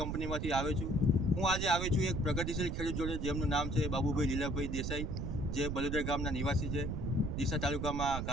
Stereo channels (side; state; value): right; noise; rumble, 2 dB below the sound